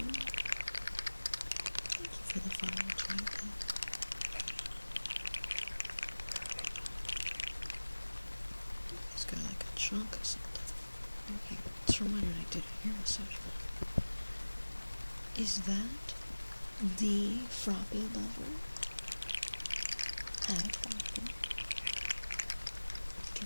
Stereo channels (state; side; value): inverted; both; correlation -1.00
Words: Thank you for the follow, Jonathan. It's got like a chunk or something. Okay, it's from when I did a ear massage. Is that the Froppy lover? Hi, Froppy.